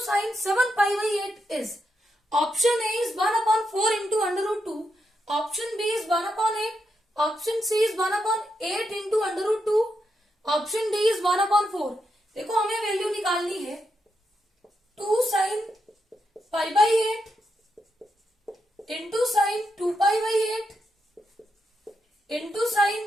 sin 7 pi by 8 is option A is 1 upon 4 into under root 2, option B is 1 upon 8, option C is 1 upon 8 into under root 2, option D is 1 upon 4। देखो हमें value निकालनी है 2 sin pi by 8 into sine 2 pi by 8 into sine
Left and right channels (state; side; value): normal; both; correlation 0.83